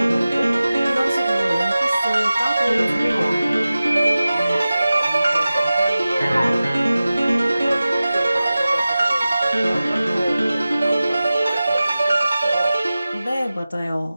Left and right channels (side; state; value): both; inverted; correlation -0.95